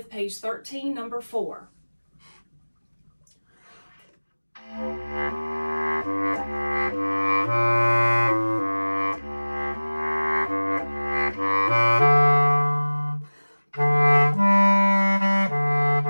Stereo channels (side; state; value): both; inverted; correlation -1.00